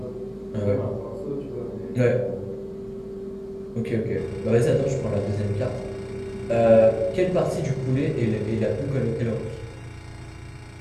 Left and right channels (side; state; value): both; identical; correlation 1.00